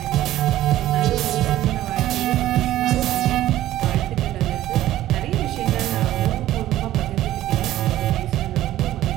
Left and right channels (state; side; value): quieter; left; 14.1 dB